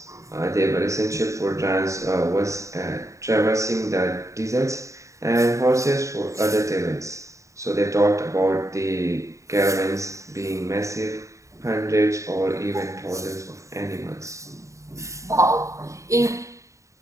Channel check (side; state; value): left; late; 0.15 ms